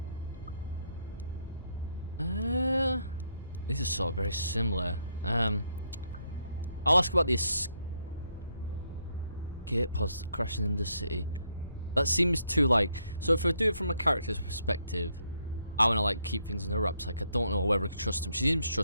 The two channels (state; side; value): inverted; both; correlation -0.74